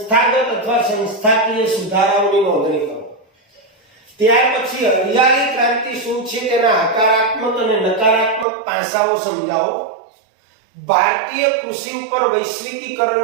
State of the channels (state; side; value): drops out; left; at 8.5 s